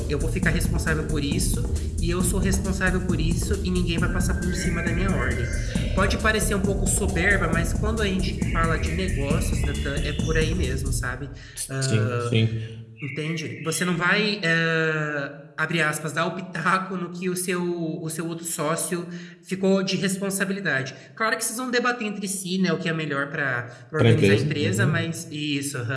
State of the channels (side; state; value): both; identical; correlation 1.00